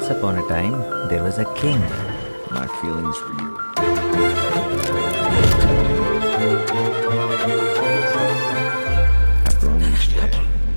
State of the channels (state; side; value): inverted; both; correlation -1.00